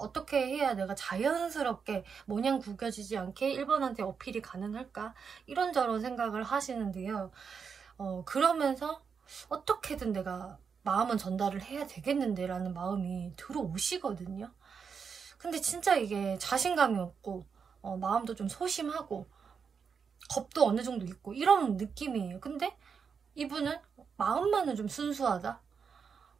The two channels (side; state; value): left; quieter; 6.2 dB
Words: 해야 내가 자연스럽게 모냥 구겨지지 않게 1번한테 어필이 가능할까? 이런저런 생각을 하시는데요. 그러면서 어떻게든 내가 마음은 전달을 해야 되겠는데 라는 마음이 들어오시거든요. 근데 진짜 이게 자신감이 없고 마음도 좀 소심하고 겁도 어느 정도 있고 이런 느낌이에요. 근데 이분은 마음만은 좀 순수하다?